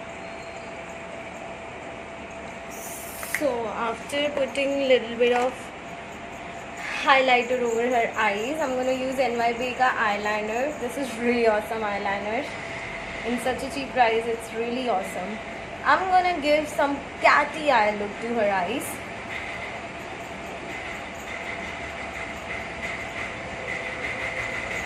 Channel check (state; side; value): identical; both; correlation 1.00